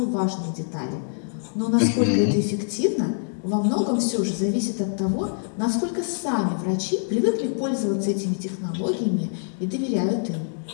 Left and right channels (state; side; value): silent; right; digital silence